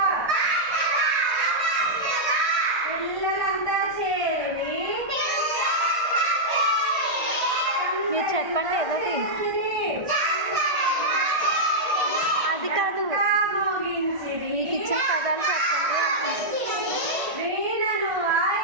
పిల్లలంతా చేరి మీరు చెప్పండి ఏదోటి. అది కాదు, మీకు ఇచ్చిన పదాలు చెప్పండి.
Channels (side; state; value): left; late; 1.5 ms